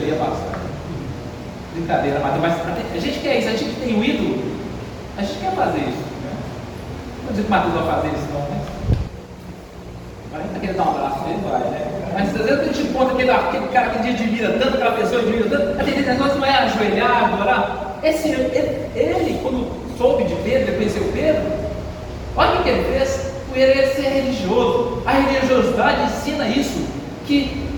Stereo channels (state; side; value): identical; both; correlation 1.00